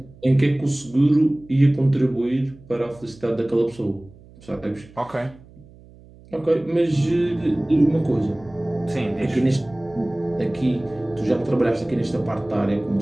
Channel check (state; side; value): noise; right; hum, 23 dB below the sound